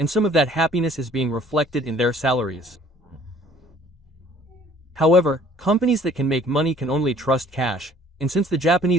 some of that happiness is being reflected in their salaries. However, companies that can make money can only trust cash, and since the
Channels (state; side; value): normal; both; correlation 0.56